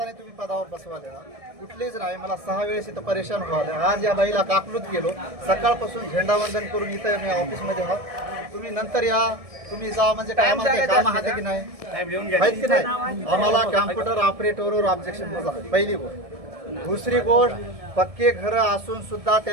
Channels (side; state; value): left; late; 1.7 ms